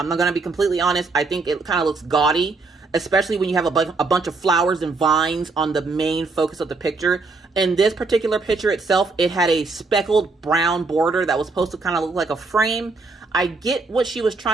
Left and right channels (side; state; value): left; quieter; 3.9 dB